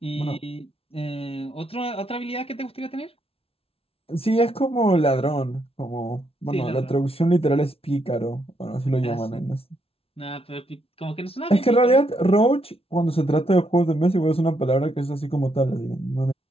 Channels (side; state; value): right; late; 0.27 ms